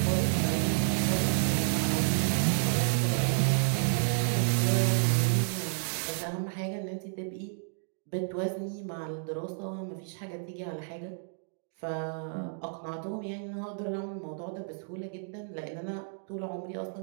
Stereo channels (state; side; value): silent; left; digital silence